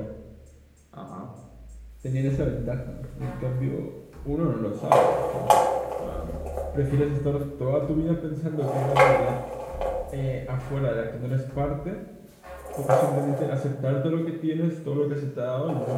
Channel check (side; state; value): both; identical; correlation 1.00